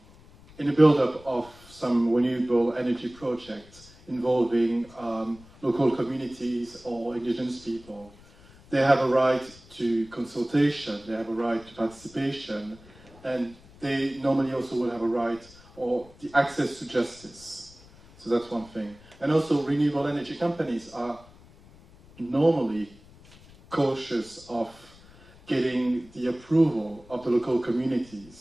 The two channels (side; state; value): left; noise; rumble, 24 dB below the sound